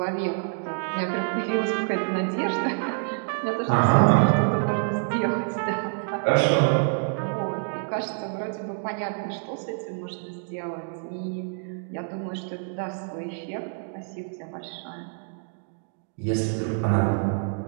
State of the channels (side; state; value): left; silent; 60 dB below the other